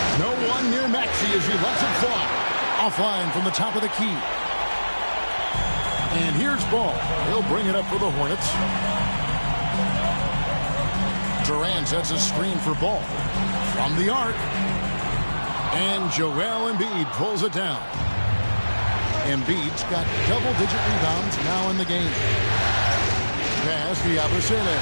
No one near Maxey as he lets it fly. Offline from the top of the key. And here's Ball. He'll bring it up for the Hornets. Durant sets a screen for Ball. From the arc. And Joel Embiid pulls it down. Embiid's got double-digit rebounds now in the game. Pass to Yabusele.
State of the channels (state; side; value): inverted; both; correlation -1.00